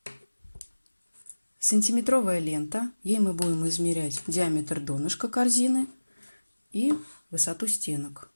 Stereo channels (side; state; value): both; inverted; correlation -1.00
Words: сантиметровая лента, ей мы будем измерять диаметр донышка корзины и высоту стенок.